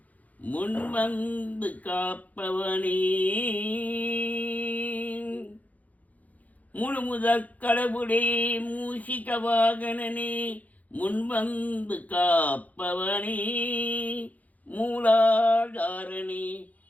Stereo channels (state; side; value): late; right; 0.076 ms